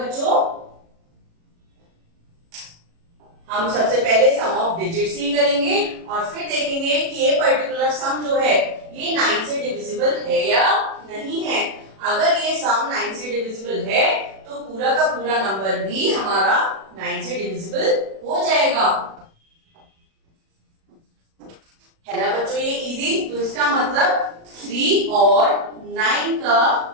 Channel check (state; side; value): late; left; 37 ms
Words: हम सबसे पहले सम ऑफ डिजिट्स ही करेंगे और फिर देखेंगे कि ये पर्टिकुलर सम जो है ये 9 से डिविजिबल है या नहीं है। अगर ये सम 9 से डिविजिबल है तो पूरा का पूरा नंबर भी हमारा 9 से डिविजिबल हो जाएगा। है ना बच्चों ये इजी। तो इसका मतलब 3 और 9 का